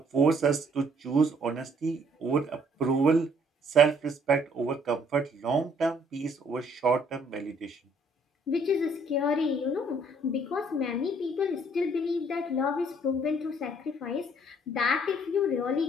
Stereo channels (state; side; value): normal; both; correlation 0.63